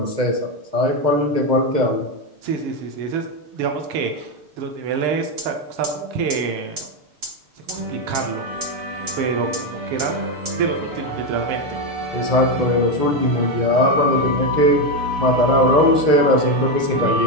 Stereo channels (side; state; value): left; late; 6.7 ms